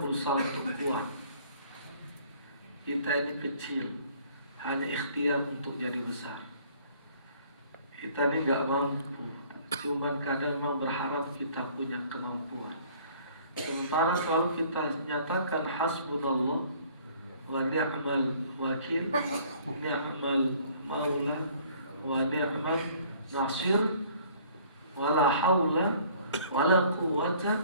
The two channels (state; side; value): inverted; both; correlation -0.56